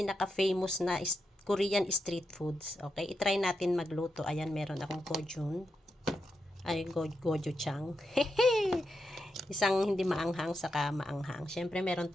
na Korean street foods. Okay, itry natin magluto. Ayan, meron akong gochujang. Ay, gochujang. Isang hindi maanghang, saka maanghang. Siyempre, meron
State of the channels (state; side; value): normal; both; correlation 0.86